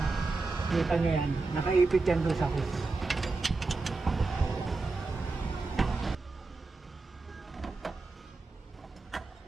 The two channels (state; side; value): quieter; left; 3.7 dB